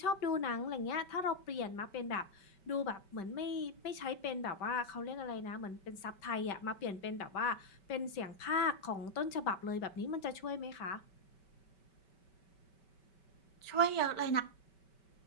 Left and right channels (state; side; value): late; right; 5.2 ms